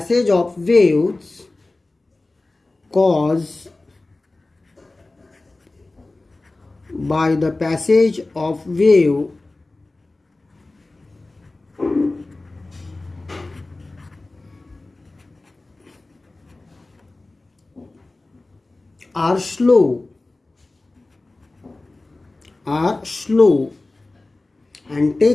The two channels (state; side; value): quieter; right; 3.1 dB